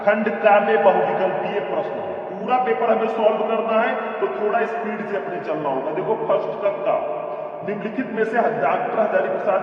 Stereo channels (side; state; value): both; identical; correlation 1.00